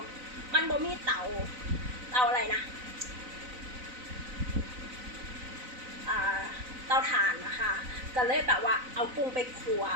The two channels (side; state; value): left; late; 4.0 ms